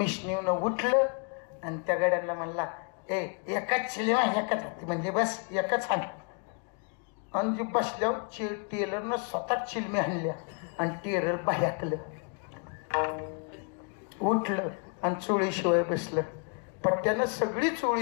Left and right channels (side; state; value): right; quieter; 37.5 dB